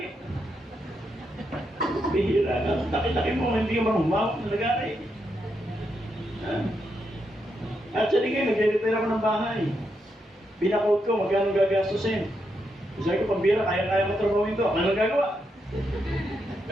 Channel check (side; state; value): both; normal; correlation 0.82